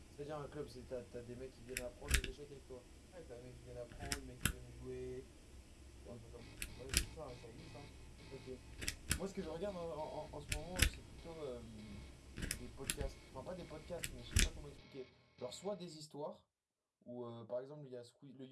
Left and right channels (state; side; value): identical; both; correlation 1.00